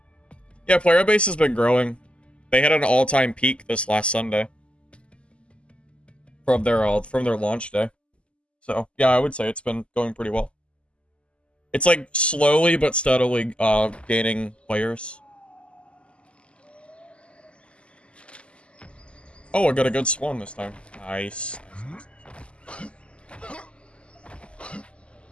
Yeah, player base has been growing. They had an all-time peak this last Sunday. From their launch day. So, yeah, I would say it's been going pretty well. It's like slowly but steadily gaining players. Oh, I got a good swan this time. Nice.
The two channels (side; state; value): right; late; 0.055 ms